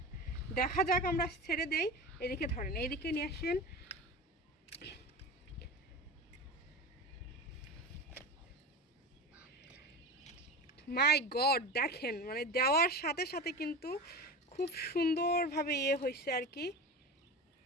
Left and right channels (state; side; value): normal; both; correlation 0.28